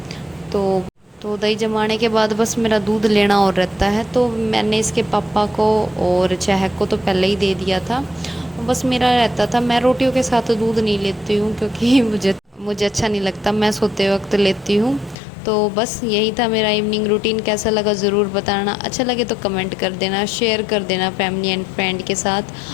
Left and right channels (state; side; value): drops out; right; at 15.2 s